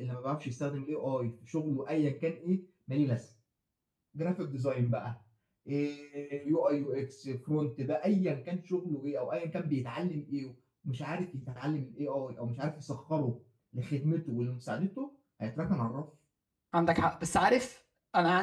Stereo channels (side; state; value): both; identical; correlation 1.00